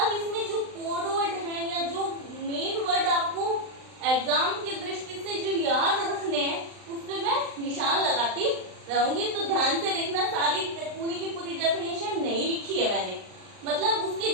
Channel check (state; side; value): late; left; 39 ms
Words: इसमें जो कोड वर्ड है या जो मेन वर्ड आपको एग्जाम की दृष्टि से जो याद रखने हैं उस पर मैं निशान लगाती रहूंगी, तो ध्यान से देखना। सारी पूरी की पूरी डेफिनेशन नहीं लिखी है मैंने, मतलब उसके